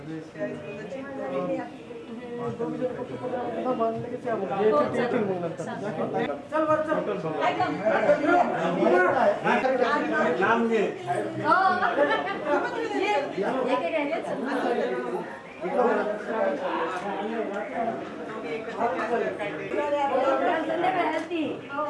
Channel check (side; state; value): both; identical; correlation 1.00